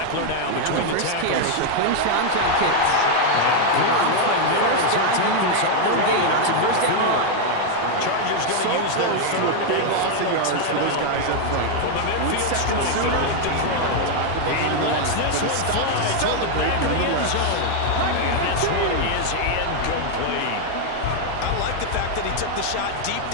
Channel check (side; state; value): both; different; correlation 0.00